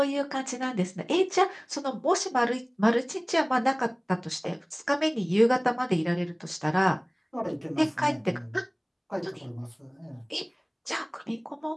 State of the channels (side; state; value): both; identical; correlation 1.00